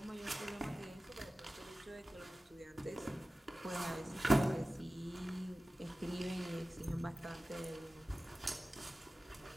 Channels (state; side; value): normal; both; correlation 0.96